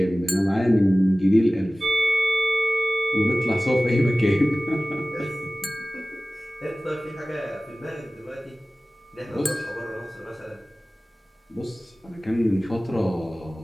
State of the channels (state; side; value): normal; both; correlation 0.97